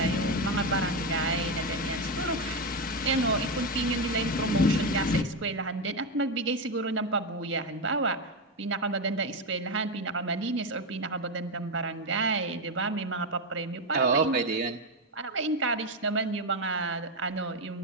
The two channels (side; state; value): both; normal; correlation 0.10